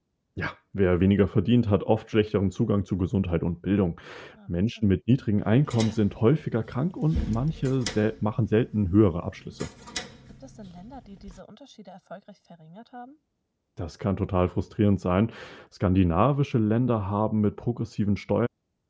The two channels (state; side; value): identical; both; correlation 1.00